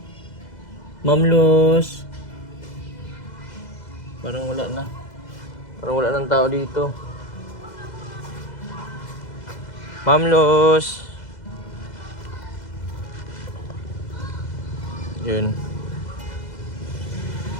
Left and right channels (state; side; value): late; right; 2.0 ms